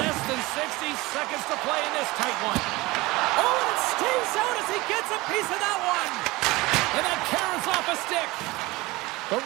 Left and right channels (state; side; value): quieter; left; 21.4 dB